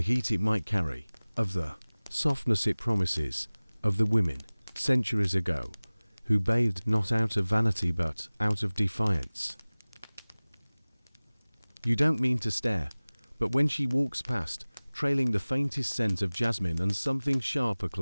heat it might carry, of the softness it promises, of the women, centuries ago, who bathed not out of vanity but out of defiance. You don't mean to stare, but when she walks past, trailing the faintest scent of jasmine and something sharp a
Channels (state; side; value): inverted; both; correlation -1.00